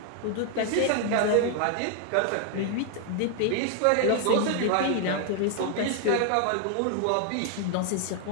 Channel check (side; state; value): both; different; correlation 0.00